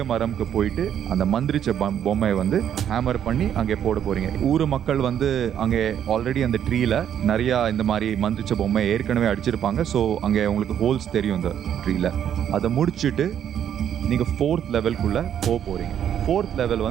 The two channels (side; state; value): left; quieter; 9.6 dB